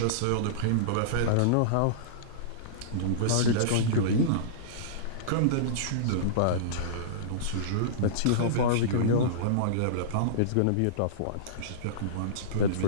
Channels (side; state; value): both; different; correlation -0.04